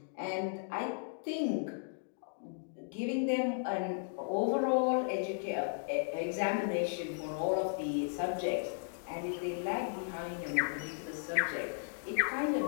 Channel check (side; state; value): right; silent; digital silence